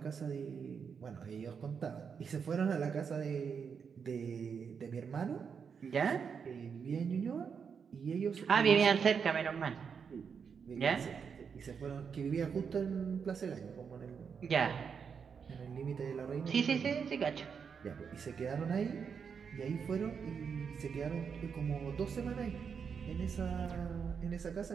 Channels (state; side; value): quieter; left; 6.4 dB